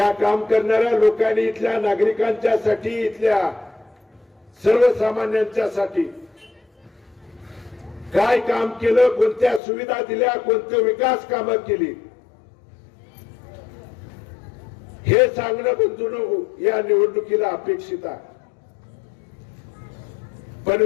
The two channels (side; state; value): right; drops out; at 9.6 s